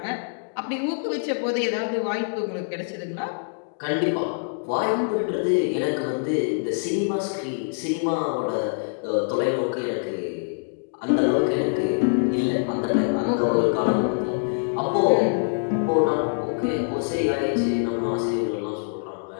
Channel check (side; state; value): right; silent; digital silence